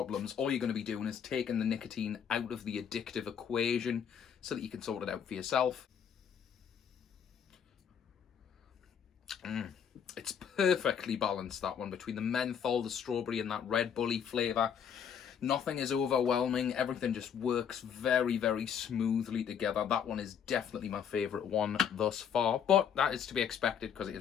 All you're going to be doing is taking the nicotine out of the addictive equation so that you can sort it out for yourself. It's perfectly balanced, that one, between the menthol, the strawberry and that Red Bully flavour. Nothing is overwhelming. Everything just works very, very smoothly together. That one is definitely my favourite one thus far, but that is to be expected because it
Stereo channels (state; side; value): quieter; right; 7.9 dB